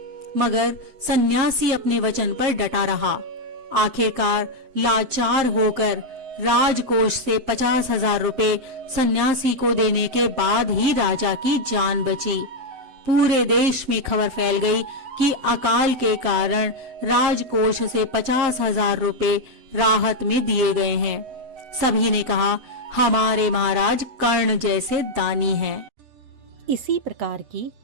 मगर सन्यासी अपने वचन पर डटा रहा। आखिरकार लाचार होकर राजकोष से 50,000 रुपए सन्यासी को देने के बाद ही राजा की जान बची। पूरे देश में खबर फैल गई कि अकाल के कारण राजकोष से 50,000 रुपए राहत में दिए गए हैं। सभी ने कहा, हमारे महाराज कर्ण जैसे दानी हैं। इसी प्रकार की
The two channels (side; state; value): left; late; 7.5 ms